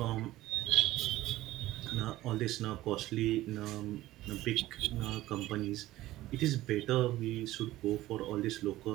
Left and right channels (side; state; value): left; quieter; 16.1 dB